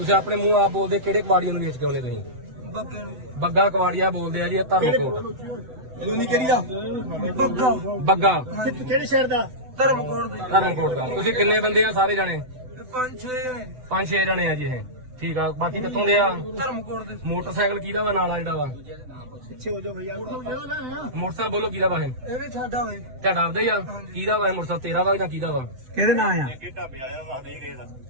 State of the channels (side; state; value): left; late; 7.9 ms